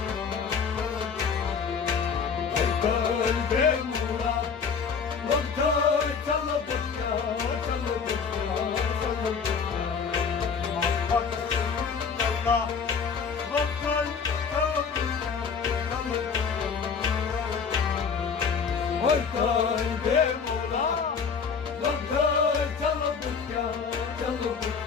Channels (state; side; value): quieter; right; 5.9 dB